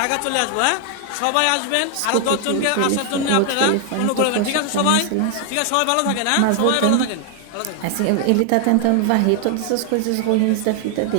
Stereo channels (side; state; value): both; different; correlation 0.00